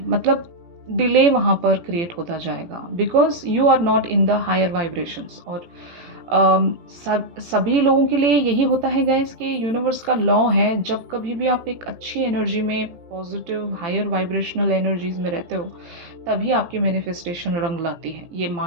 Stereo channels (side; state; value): left; late; 18 ms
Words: मतलब डिले वहाँ पर क्रिएट होता जाएगा, because you are not in the higher vibrations. और सभी लोगों के लिए यही होता है गाइस कि यूनिवर्स का लॉ है, जब कभी भी आप एक अच्छी एनर्जी में, पॉजिटिव हायर वाइब्रेशनल एनर्जीज में रहते हो, तभी आपकी मैनिफेस्टेशन रंग लाती है। ये